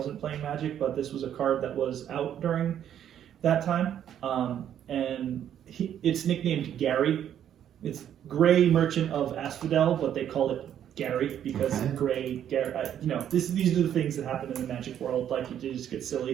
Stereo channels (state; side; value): quieter; left; 10.0 dB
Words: playing Magic, but this was a card that was out during that time. And it's nicknamed Gary. It's Grey Merchant of Asphodel, but they call it Gary because Gray, Gary. These are the things that happen in the Magic world. Like you just get